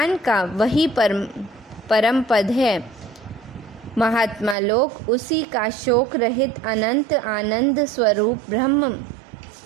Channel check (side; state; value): left; drops out; at 4.5 s